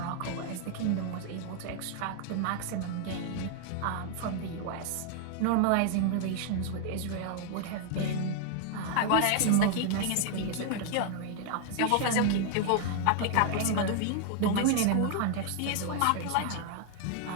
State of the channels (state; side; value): different; both; correlation 0.00